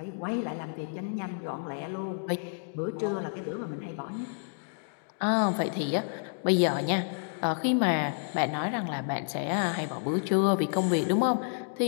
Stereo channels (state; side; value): silent; right; digital silence